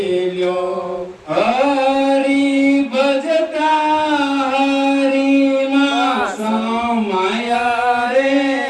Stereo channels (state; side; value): identical; both; correlation 1.00